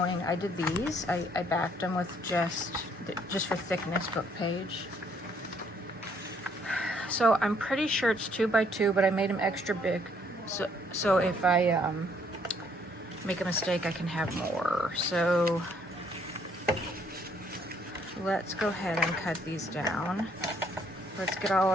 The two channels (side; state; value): both; normal; correlation 0.66